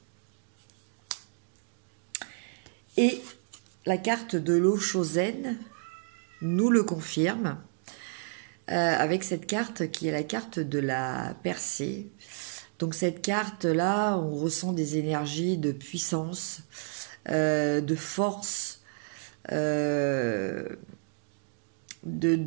Et la carte de l'eau Chosen nous le confirme avec cette carte qui est la carte de la percée. Donc cette carte-là, on ressent des énergies de puissance, de force,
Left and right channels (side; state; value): left; silent; 57 dB below the other